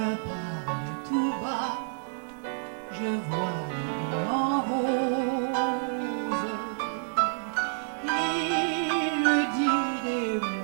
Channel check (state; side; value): silent; left; digital silence